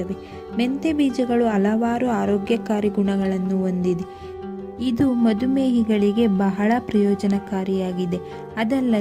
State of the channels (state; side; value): identical; both; correlation 1.00